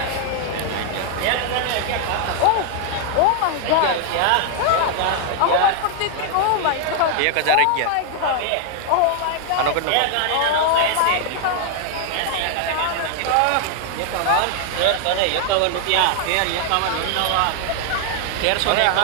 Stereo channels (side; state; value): both; different; correlation 0.00